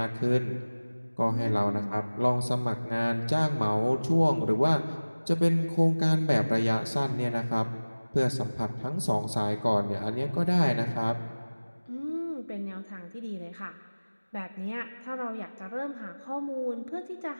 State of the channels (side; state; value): both; inverted; correlation -1.00